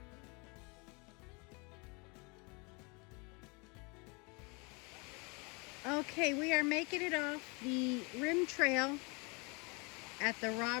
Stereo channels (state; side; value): quieter; right; 29.8 dB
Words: Okay, we are making it off the rim trail at the